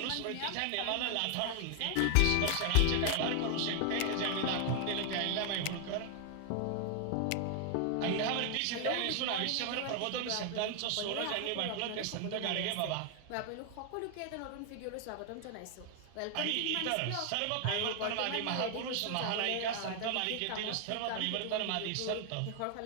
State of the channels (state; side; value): different; both; correlation 0.00